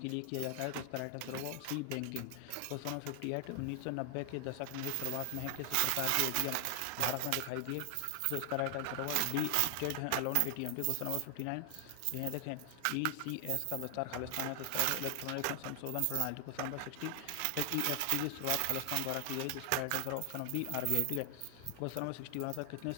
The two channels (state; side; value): different; both; correlation 0.00